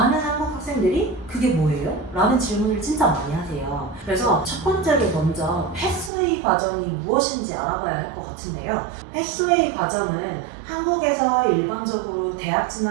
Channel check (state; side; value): drops out; left; at 6.1 s